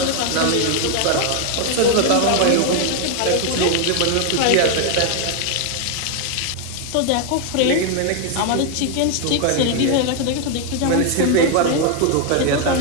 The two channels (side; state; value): both; different; correlation 0.01